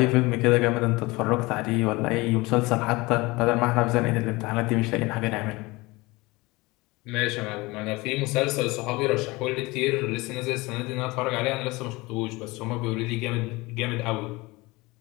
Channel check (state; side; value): quieter; right; 22.7 dB